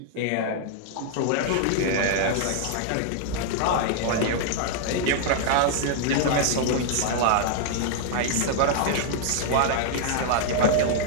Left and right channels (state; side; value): different; both; correlation -0.01